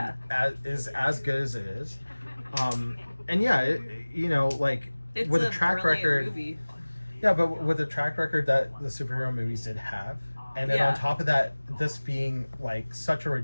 And is as good as it is. And yeah, you know, like it's with a track record. Movie. Yeah, but with the track record that the superhero movies did have, and then on top of that, this being like such a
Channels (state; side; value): inverted; both; correlation -1.00